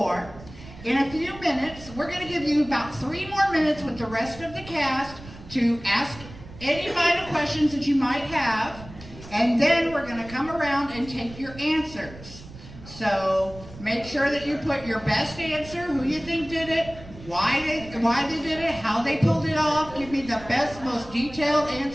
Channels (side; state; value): right; noise; rumble, 17 dB below the sound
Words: In a few minutes, we're going to give you about 3 more minutes with the rest of the cast to ask any final questions that you might have, and then we're going to come around and take your answers. So make sure that you put your best answer, who you think did it, why they did it, how they pulled it off. Give me the best, most detailed